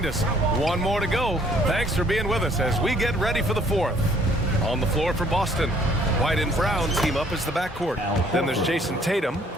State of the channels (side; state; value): both; normal; correlation 0.61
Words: us. One more to go. Thanks for being with us as we get ready for the fourth. On the floor for Boston, White and Brown team up as the backcourt. Then there's Jason Tatum.